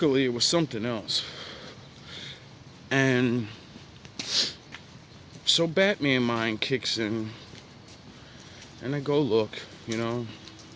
it was something else. And so Batman mind kicks in, and I go look, and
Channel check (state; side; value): identical; both; correlation 1.00